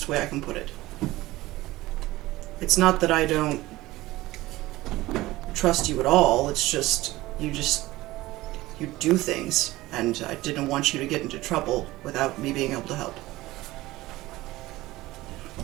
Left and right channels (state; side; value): quieter; left; 18.2 dB